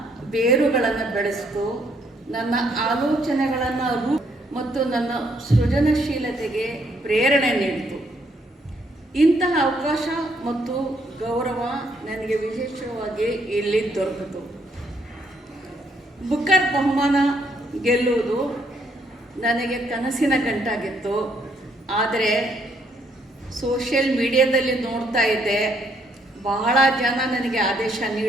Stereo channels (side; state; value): both; normal; correlation 0.70